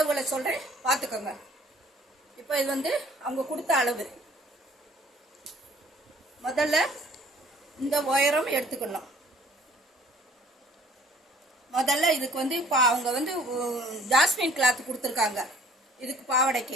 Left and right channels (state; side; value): normal; both; correlation 0.56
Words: சொல்கிறேன், பார்த்துக்கோங்க. இப்போ இது வந்து அவங்க கொடுத்த அளவு. முதல்ல இந்த உயரம் எடுத்துக்கணும். முதல்ல இதுக்கு வந்து அவங்க வந்து ஜாஸ்மின் கிளாத் கொடுத்துருக்காங்க இதுக்கு